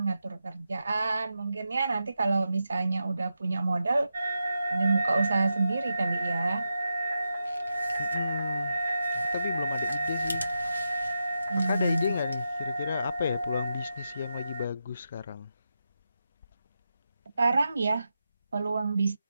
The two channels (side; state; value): both; inverted; correlation -0.88